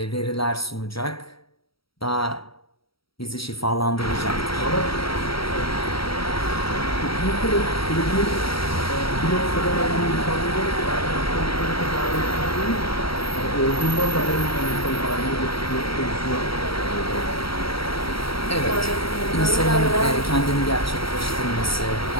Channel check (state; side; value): late; right; 0.75 ms